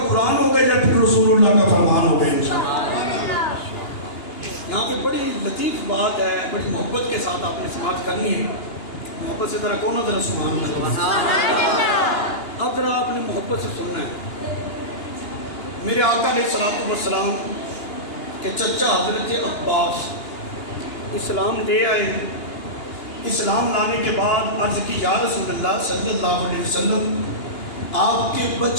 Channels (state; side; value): late; right; 2.9 ms